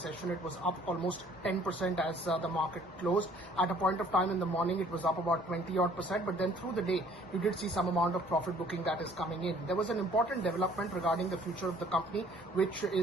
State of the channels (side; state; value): both; normal; correlation 0.57